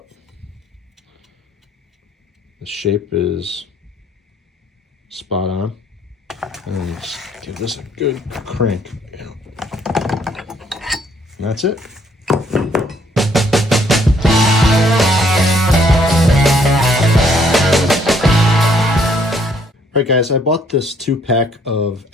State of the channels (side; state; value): both; normal; correlation 0.66